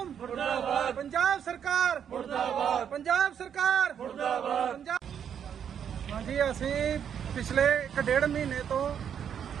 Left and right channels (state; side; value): quieter; left; 8.4 dB